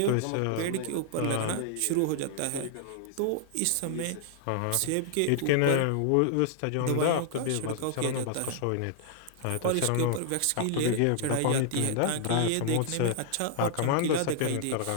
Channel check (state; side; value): different; both; correlation -0.01